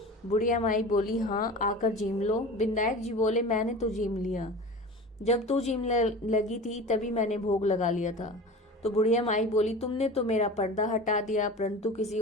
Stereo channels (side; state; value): both; normal; correlation 0.35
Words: बुढ़िया माई बोली, हाँ, आकर जीम लो। बिंदायक जी बोले, मैंने तो जीम लिया, जब तू जीम लगी थी तभी मैंने भोग लगा लिया था। तो बुढ़िया माई बोली, तुमने तो मेरा पर्दा हटा दिया, परंतु किसी